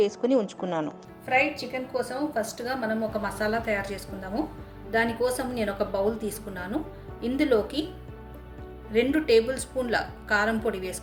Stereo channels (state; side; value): identical; both; correlation 1.00